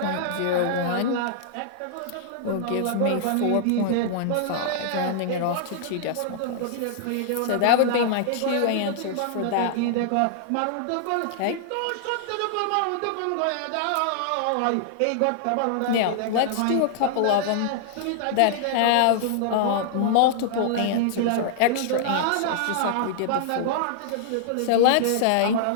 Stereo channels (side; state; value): both; different; correlation -0.01